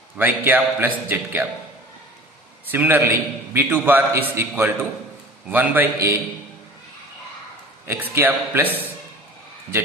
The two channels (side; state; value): both; normal; correlation 0.41